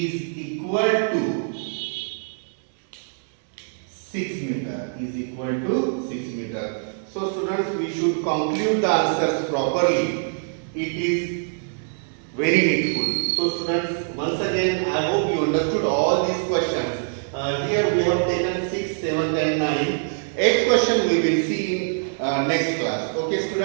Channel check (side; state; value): left; silent; digital silence